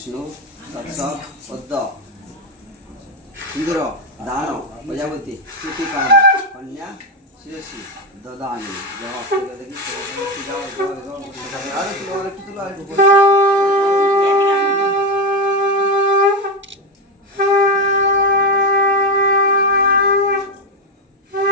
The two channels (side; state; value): both; normal; correlation 0.12